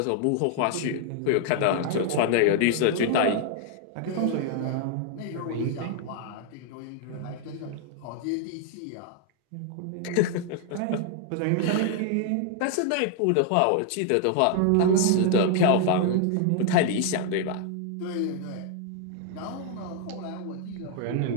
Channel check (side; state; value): both; different; correlation 0.00